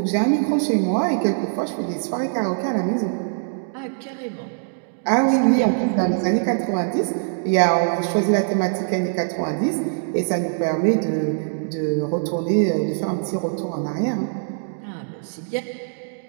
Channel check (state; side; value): silent; left; digital silence